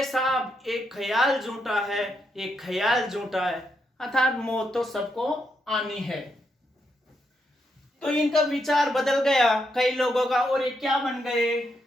साहब, एक ख्याल झूठा है, एक ख्याल झूठा है। अर्थात मौत तो सबको आनी है। तो इनका विचार बदल गया कई लोगों का, और ये क्या बन गए,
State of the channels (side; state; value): both; normal; correlation 0.80